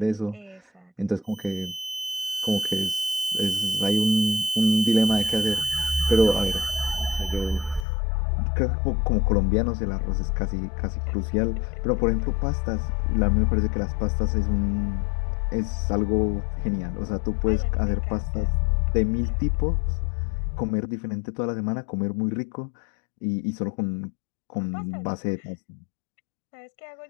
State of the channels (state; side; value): drops out; right; at 7.9 s